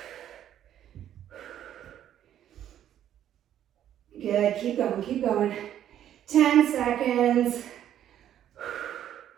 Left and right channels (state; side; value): quieter; left; 10.9 dB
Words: Good, keep going, keep going. 10 seconds.